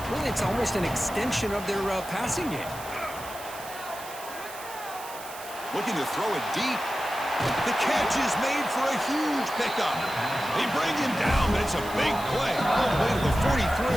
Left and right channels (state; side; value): noise; right; hiss, 14 dB below the sound